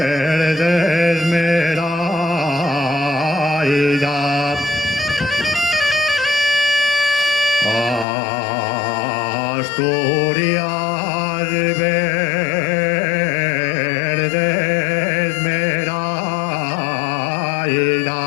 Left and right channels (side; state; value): right; drops out; at 8.1 s